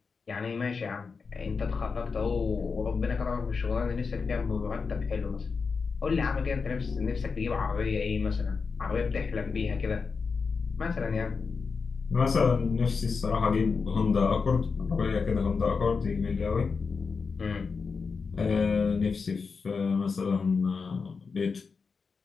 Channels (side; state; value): right; quieter; 5.0 dB